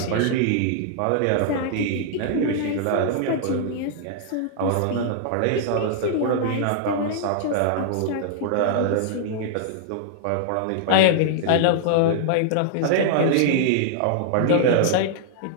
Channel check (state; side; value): different; both; correlation -0.01